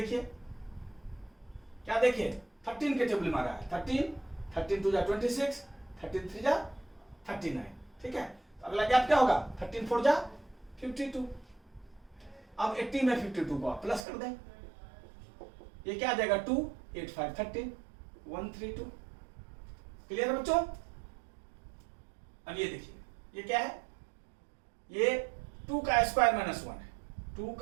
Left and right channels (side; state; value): left; drops out; at 14.1 s